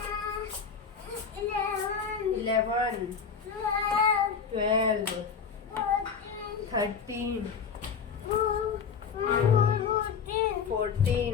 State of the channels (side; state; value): right; quieter; 6.3 dB